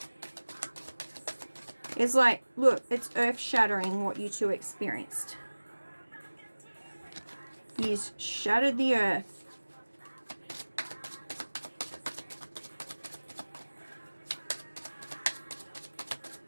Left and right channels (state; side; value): inverted; both; correlation -1.00